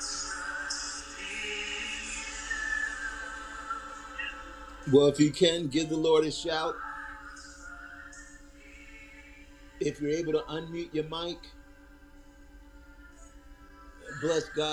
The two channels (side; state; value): both; identical; correlation 1.00